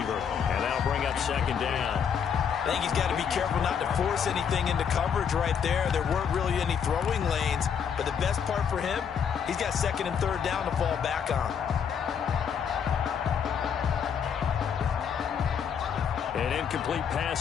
And that'll bring up 2nd down. I think he's got to be careful not to force anything into coverage right there. There weren't really any throwing lanes. But the best part for him, he's got 2nd and 3rd down to fall back on. An incomplete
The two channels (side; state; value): right; quieter; 7.4 dB